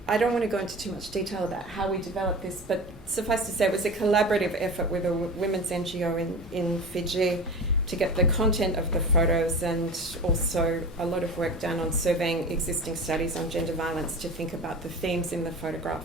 I don't want to go into too much detail about how we developed this, but suffice to say it was a collaborative effort with a women's NGO in Fiji to get the content of the photos, and also a lot of work done on surveying existing studies on gender violence to think about the themes in the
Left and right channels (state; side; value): normal; both; correlation 0.31